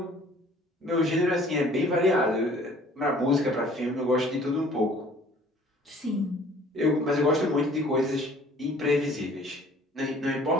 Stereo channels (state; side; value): normal; both; correlation 0.54